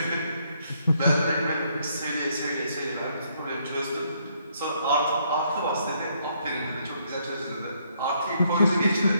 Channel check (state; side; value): inverted; both; correlation -0.71